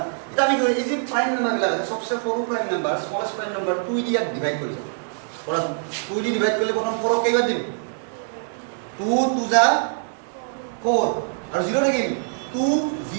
तब ये इसी प्राइम नंबर लगा सबसे सৰু prime number smallest prime number 2 দিয়ে ডিভাইড কৰি পড়া 2 দিয়ে ডিভাইড করলে প্রথম 4 কেইবার দিম 2 2 যা 4 আর 0 থাকিল 2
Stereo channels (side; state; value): left; silent; 63 dB below the other